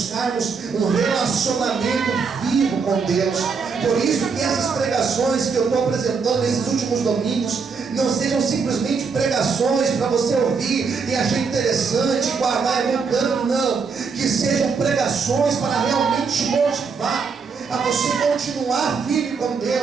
um relacionamento vivo com Deus. Por isso que essas pregações que eu estou apresentando nesses últimos domingos não sejam simplesmente pregações para você ouvir e achar interessante, guardar em um canto. Não. Que sejam pregações para realmente te motivar a você continuar firme com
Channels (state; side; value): quieter; left; 5.3 dB